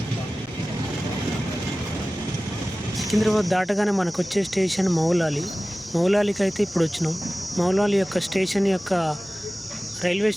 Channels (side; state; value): both; normal; correlation 0.97